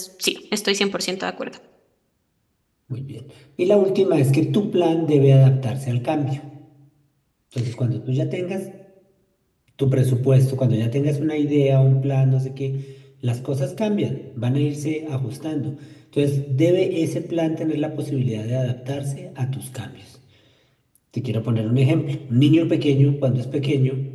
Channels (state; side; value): identical; both; correlation 1.00